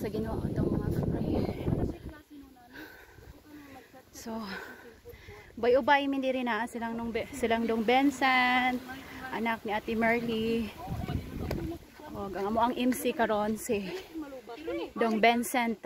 Ginoo itong mga prayer. So, bay-ubay min diri na silang dong Benson, anak ni Ate Merly. O ang amo ang MC karon si Dong Benson,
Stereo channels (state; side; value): identical; both; correlation 1.00